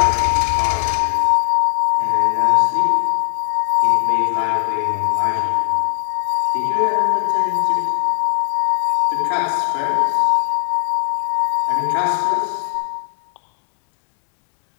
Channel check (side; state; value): right; silent; 67 dB below the other